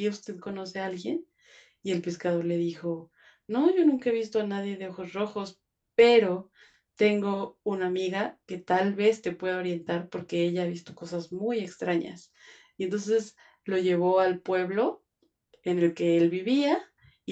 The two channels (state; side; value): identical; both; correlation 1.00